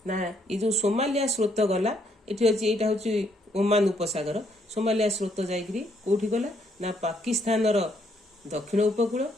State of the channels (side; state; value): both; normal; correlation 0.71